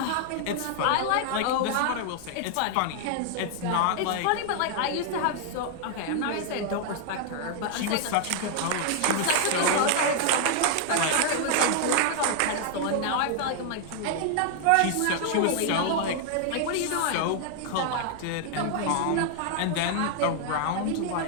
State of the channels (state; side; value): different; both; correlation 0.00